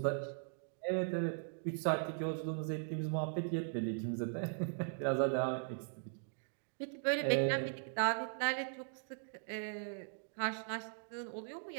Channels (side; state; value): left; silent; digital silence